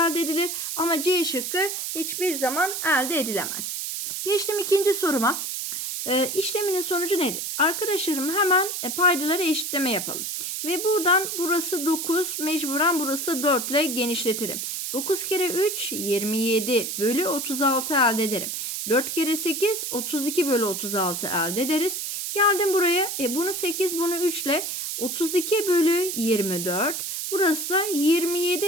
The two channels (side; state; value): right; noise; hiss, 4 dB below the sound